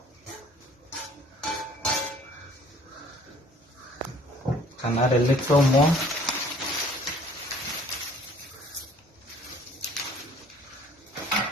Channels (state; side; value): normal; both; correlation 0.55